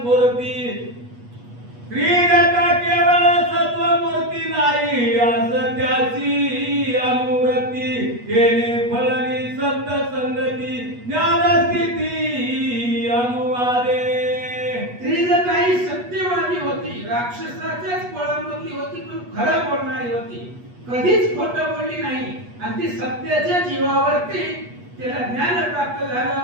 श्रीजटा केवळ सत्व मूर्ती नाही असं त्याची अनुवृत्ती तेने फळली संत संगती ज्ञानस्थिती अनुवादे. त्रिजटा ही सत्यवादी होती, राक्षसाच्याच पळामधली होती, पण खरं बोलणारी होती, कधीच खोटं बोलली नाही आणि ती सत्याच्या जीवावरती त्याला ज्ञान प्राप्त झालं,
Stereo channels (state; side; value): late; left; 8.3 ms